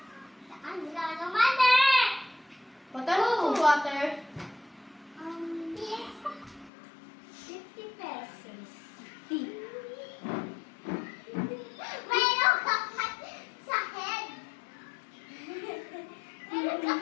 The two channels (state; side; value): drops out; right; at 6.7 s